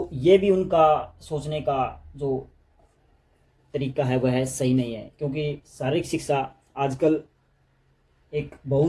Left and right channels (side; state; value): both; identical; correlation 1.00